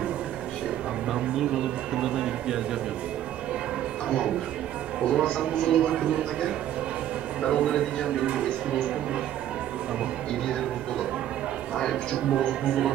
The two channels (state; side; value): quieter; left; 11.7 dB